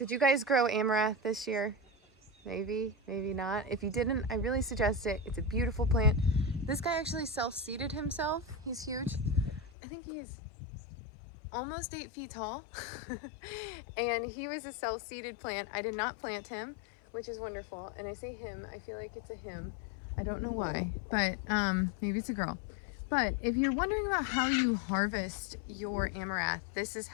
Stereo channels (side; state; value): right; drops out; at 9.7 s